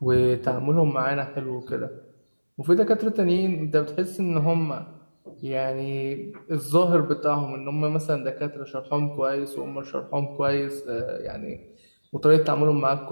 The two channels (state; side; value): inverted; both; correlation -1.00